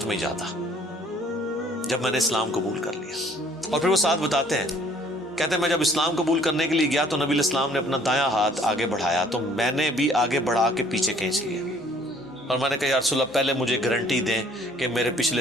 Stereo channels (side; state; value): both; normal; correlation 0.58